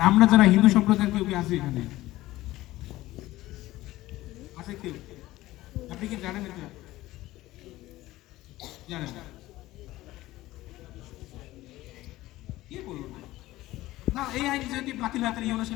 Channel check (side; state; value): right; quieter; 17.0 dB